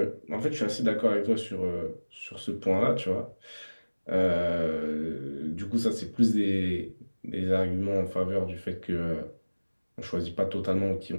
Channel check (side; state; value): both; inverted; correlation -1.00